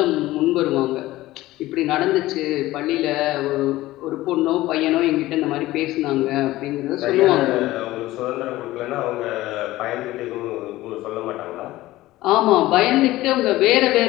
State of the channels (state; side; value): quieter; right; 17.0 dB